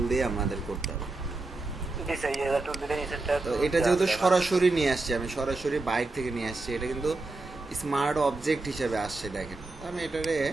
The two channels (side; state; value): left; quieter; 3.3 dB